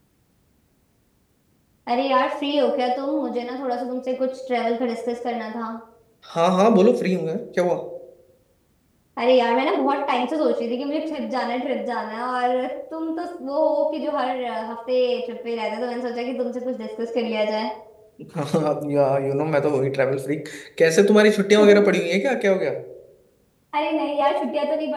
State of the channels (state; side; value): identical; both; correlation 1.00